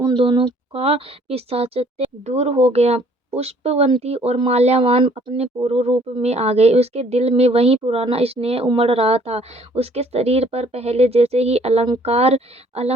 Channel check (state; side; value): normal; both; correlation 0.60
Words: दोनों का पिशाचत्व दूर हो गया। पुष्पवंती और माल्यावान अपने पूर्व रूप में आ गए। उसके दिल में वही पुराना स्नेह उमड़ रहा था। उसके शरीर पर पहले जैसे ही